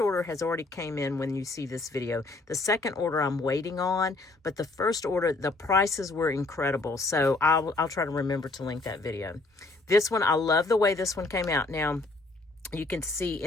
has already came in when you see this video. The second order I'm waiting on, but the first order, the prices were incredible. So I'll try to remember to link that video. This one, I love the way this one came out. Now, you can see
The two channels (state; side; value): quieter; right; 3.2 dB